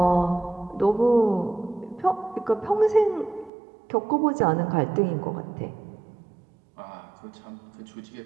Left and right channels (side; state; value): left; drops out; at 3.5 s